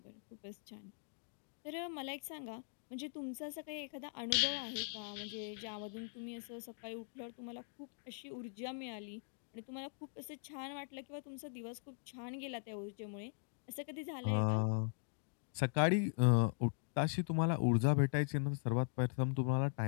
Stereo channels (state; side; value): silent; right; digital silence